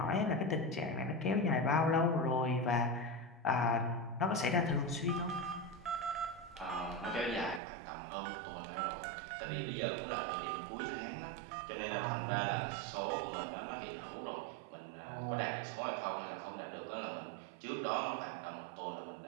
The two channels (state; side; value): drops out; left; at 7.6 s